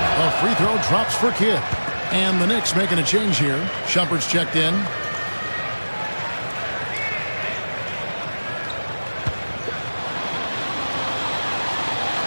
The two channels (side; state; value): both; inverted; correlation -1.00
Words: A free throw drops for Kidd. And the Knicks making a change here. Shumpert's checked in.